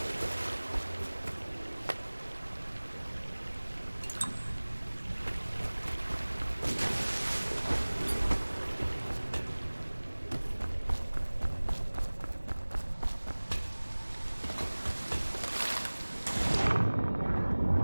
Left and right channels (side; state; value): both; inverted; correlation -1.00